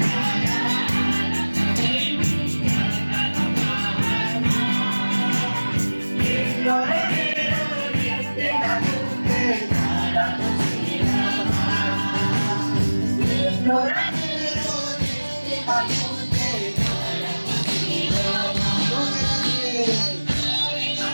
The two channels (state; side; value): inverted; both; correlation -1.00